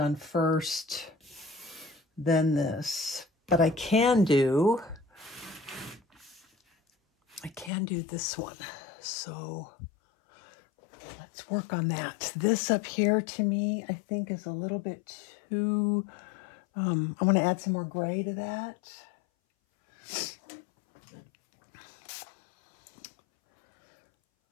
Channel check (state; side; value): drops out; right; at 7.7 s